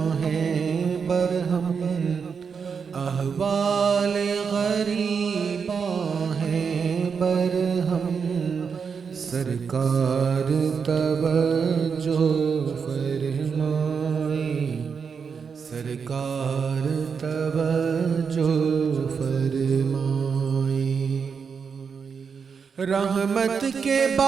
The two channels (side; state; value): left; quieter; 6.1 dB